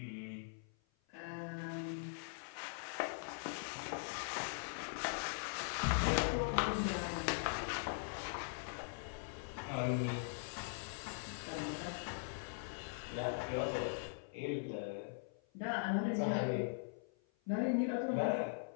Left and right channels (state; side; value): silent; right; 50 dB below the other